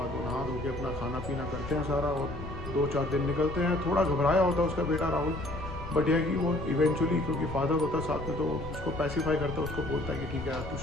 वो नहा धो के अपना खाना पीना करते हैं सारा, और 2-4 दिन निकलते हैं। थोड़ा घबराया होता है उसका बेटा राहुल, बट यह कि वो इवेंचुअली, क्योंकि फादर होता है साथ में, तो उसको पैसिफाई करता है, उसको बोलता है कि ठीक है यार तू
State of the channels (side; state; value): left; noise; rumble, 11 dB below the sound